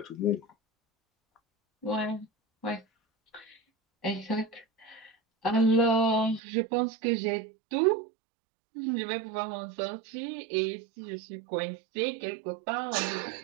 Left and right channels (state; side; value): drops out; left; at 6.4 s